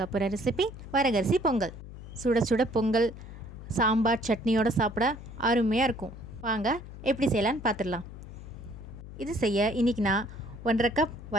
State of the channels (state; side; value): noise; left; hum, 13 dB below the sound